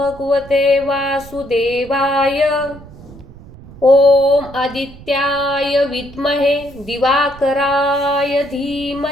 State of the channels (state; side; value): noise; right; rumble, 19 dB below the sound